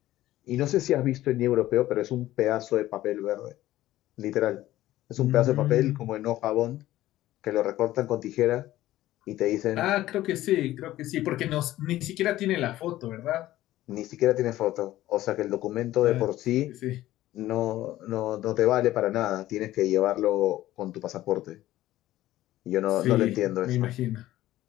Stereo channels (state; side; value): quieter; right; 15.1 dB